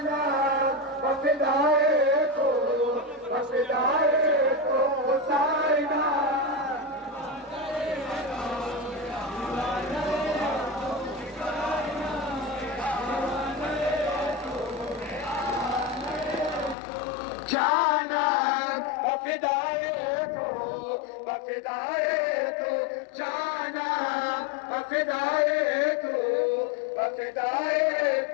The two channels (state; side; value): drops out; right; at 16.8 s